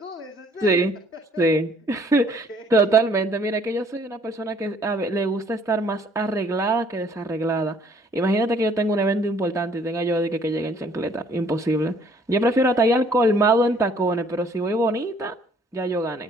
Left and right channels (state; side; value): normal; both; correlation 0.60